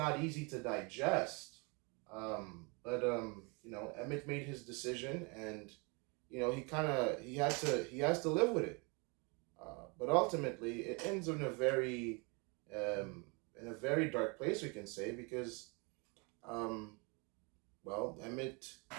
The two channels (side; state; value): left; quieter; 31.2 dB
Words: easy to digest. But Emmett made his decision, and he has to live with it. But ultimately, it ends um, in a very dark place, we can say, because Emmett